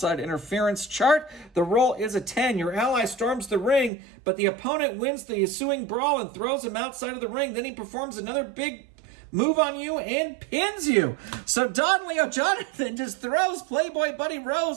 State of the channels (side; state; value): left; drops out; at 3.9 s